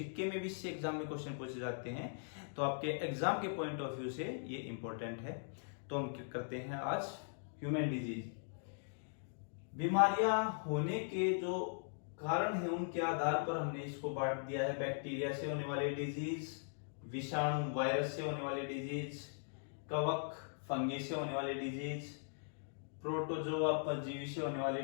में भी इससे एग्जाम में क्वेश्चन पूछे जाते हैं तो आपके एग्जाम के पॉइंट ऑफ व्यू से ये इंपॉर्टेंट है। तो हम क्या करते हैं आज ह्यूमन डिजीज। बीमारियां होने के जो कारण है उनके आधार पर हमने इसको बांट दिया है। बैक्टीरिया से होने वाली डिजीज, विषाणु वायरस से होने वाली डिजीज, कवक फंगी से होने वाली डिजीज, प्रोटोजोआ परजीवी से होने वाली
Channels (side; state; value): right; silent; digital silence